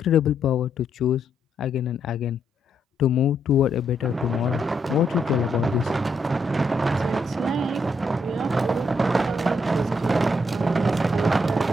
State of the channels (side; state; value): both; normal; correlation 0.76